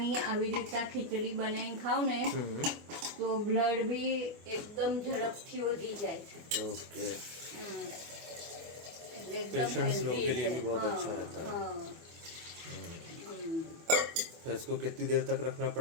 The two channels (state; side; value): late; left; 24 ms